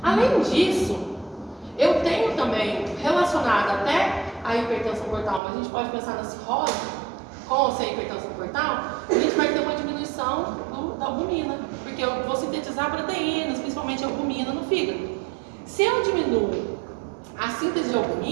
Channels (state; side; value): drops out; left; at 5.4 s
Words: Além disso, eu tenho também relacionado até a hipertensão portal, mas a gente pode pensar na cirrose, com ou sem hipertensão portal, a gente vai ter uma diminuição da albumina, porque eu vou sintetizar proteínas, principalmente albumina no fígado. Se eu diminuo a síntese de